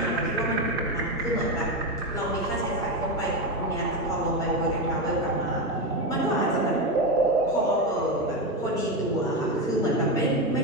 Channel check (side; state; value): both; normal; correlation 0.13